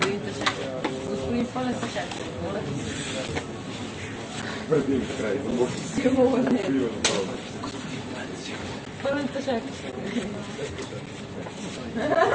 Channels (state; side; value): identical; both; correlation 1.00